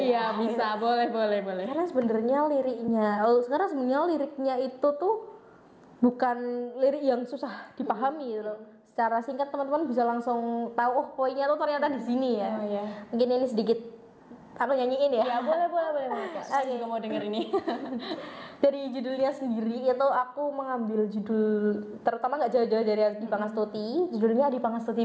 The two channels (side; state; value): both; identical; correlation 1.00